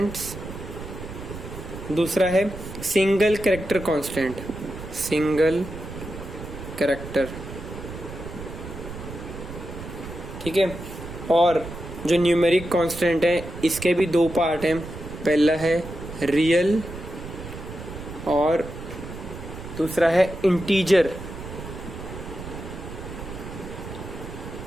दूसरा है single character constant, single character. ठीक है, और जो न्यूमेरिक कांस्टेंट है इसके भी दो पार्ट हैं। पहला है रियल और दूसरा है इंटीजर।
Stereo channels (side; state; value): right; noise; rumble, 11 dB below the sound